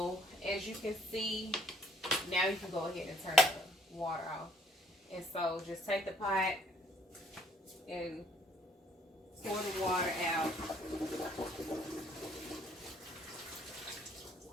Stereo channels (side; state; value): both; normal; correlation 0.62